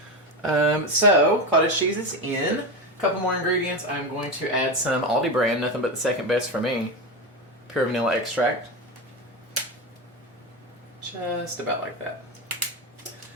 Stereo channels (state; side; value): normal; both; correlation 0.17